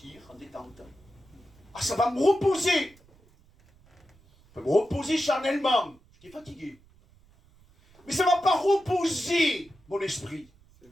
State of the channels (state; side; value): noise; right; rumble, 29 dB below the sound